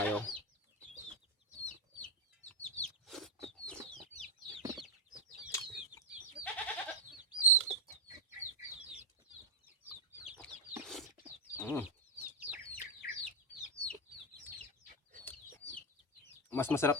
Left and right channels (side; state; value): both; normal; correlation 0.00